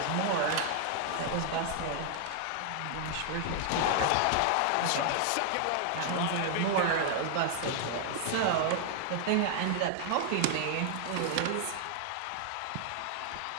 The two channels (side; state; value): both; different; correlation 0.00